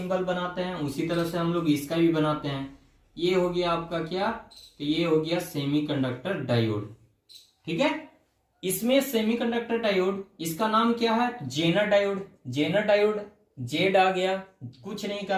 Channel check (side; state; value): both; identical; correlation 1.00